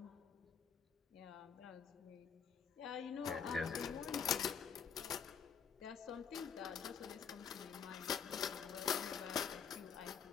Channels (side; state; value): right; quieter; 6.9 dB